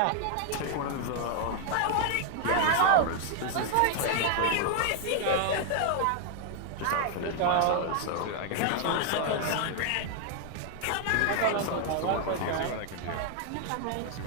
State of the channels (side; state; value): both; different; correlation 0.00